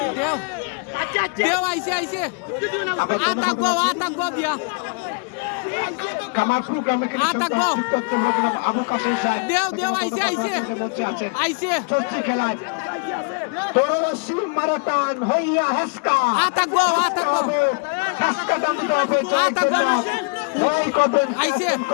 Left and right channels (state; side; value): quieter; right; 35.9 dB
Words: দেও আইছে আতাক গো দিয়া কামারপুর গ্রামে আবু কাসেম সাহেব দেও আইছে চলছে খেলায় তরুণী মারাতান হইয়া হেসকা আতাক গো হেসকা দাম দিতে হবে জয় করবেন আইছে